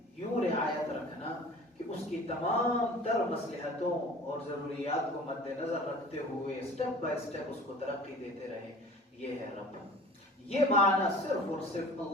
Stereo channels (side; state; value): both; normal; correlation 0.44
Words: یوں رعایت رکھنا کہ اس کی تمام تر مصلحتوں اور ضروریات کو مد نظر رکھتے ہوئے سٹیپ بائی سٹیپ اس کو ترقی دیتے رہے. یہ ہے رب. یہ معنی صرف اور صرف